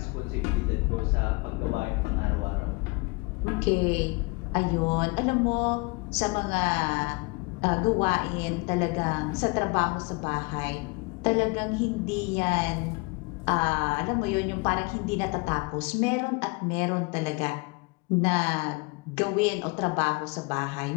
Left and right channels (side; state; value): right; quieter; 27.7 dB